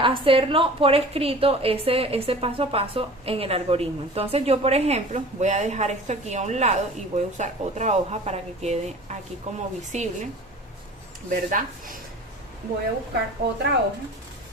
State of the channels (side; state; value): both; normal; correlation 0.41